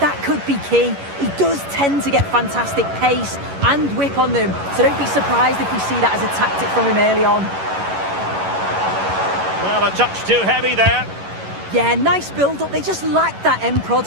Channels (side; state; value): left; late; 11 ms